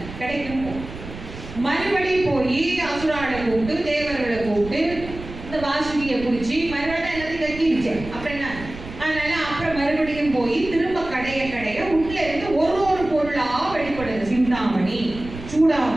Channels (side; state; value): right; noise; rumble, 13 dB below the sound